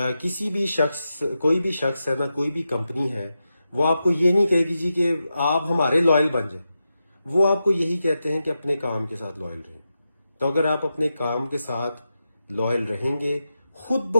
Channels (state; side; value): inverted; both; correlation -0.89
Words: کسی بھی شخص, کوئی بھی شخص ہے نا, کوئی بھی کمپنی ہے, وہ آپ کو یہ نہیں کہے گی جی کہ آپ ہمارے لائل بن جائیں. وہ آپ کو یہی کہتے ہیں کہ اپنے کام کے ساتھ لائل رہیں. تو اگر آپ اپنے کام کے ساتھ لائل رہیں گے, خود